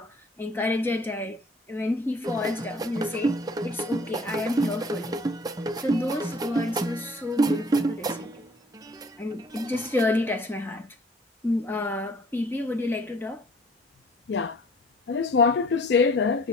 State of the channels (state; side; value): normal; both; correlation 0.54